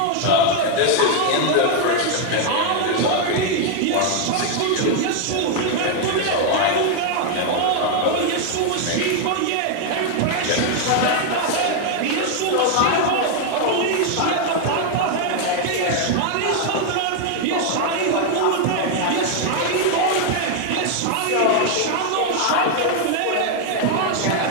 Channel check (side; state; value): both; different; correlation 0.00